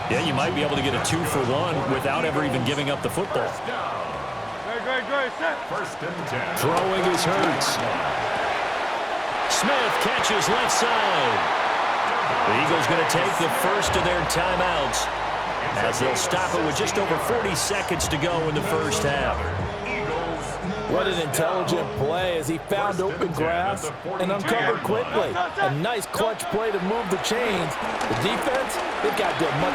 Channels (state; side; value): identical; both; correlation 1.00